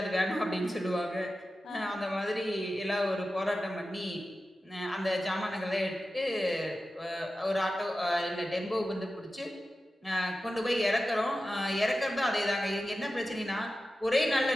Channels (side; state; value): both; normal; correlation 0.93